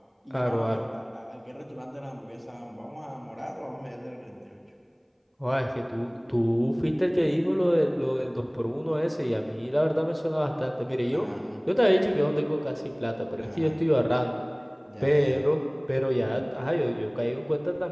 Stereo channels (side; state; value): both; identical; correlation 1.00